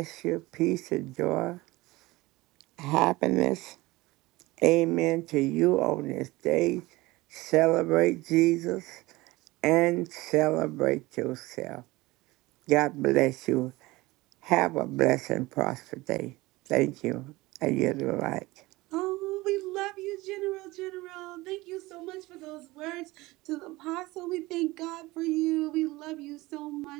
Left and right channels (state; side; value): quieter; left; 20.4 dB